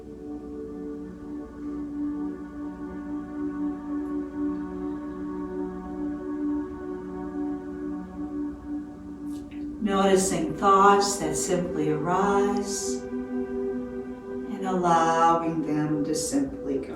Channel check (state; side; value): identical; both; correlation 1.00